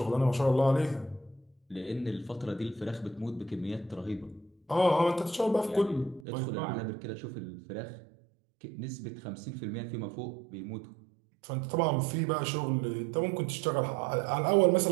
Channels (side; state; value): left; drops out; at 6.2 s